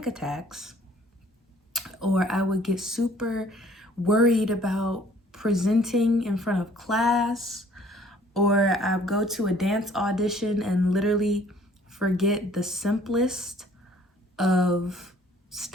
attacks, or I would get super worried about presenting in front of class, or I'd go to a dance audition and literally forget the simplest of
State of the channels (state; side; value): normal; both; correlation 0.57